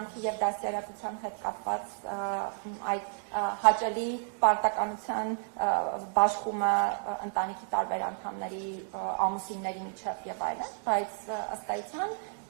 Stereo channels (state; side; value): silent; left; 57 dB below the other